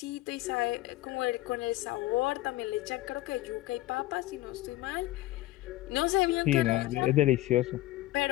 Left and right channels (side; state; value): right; quieter; 17.0 dB